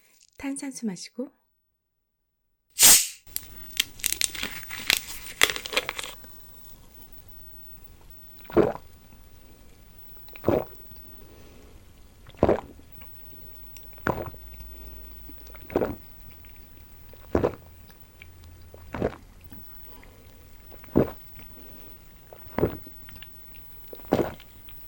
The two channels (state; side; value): identical; both; correlation 1.00